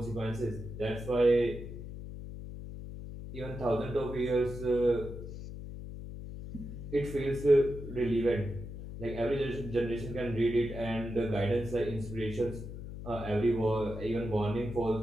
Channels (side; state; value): left; noise; hum, 10 dB below the sound